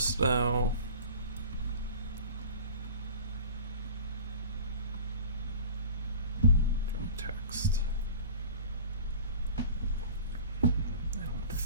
though. Text. I don't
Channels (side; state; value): both; inverted; correlation -0.40